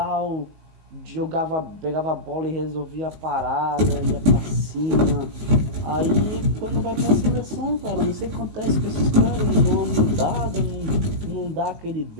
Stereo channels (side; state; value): left; late; 19 ms